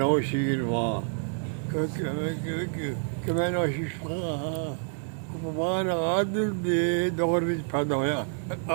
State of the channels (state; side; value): silent; left; 59 dB below the other